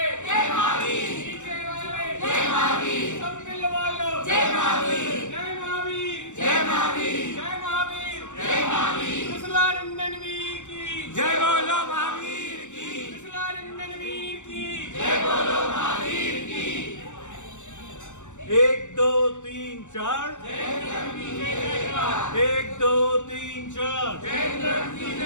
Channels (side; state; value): right; late; 0.85 ms